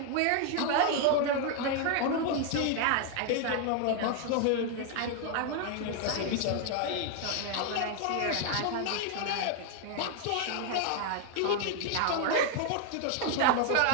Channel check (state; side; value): different; both; correlation 0.00